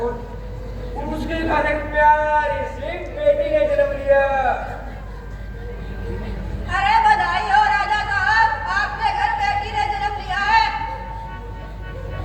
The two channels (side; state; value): both; identical; correlation 1.00